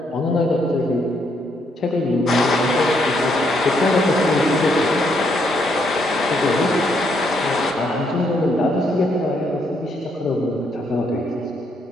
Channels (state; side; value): normal; both; correlation 0.73